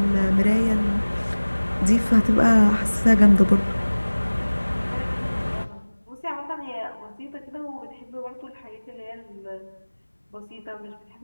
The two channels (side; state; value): both; inverted; correlation -1.00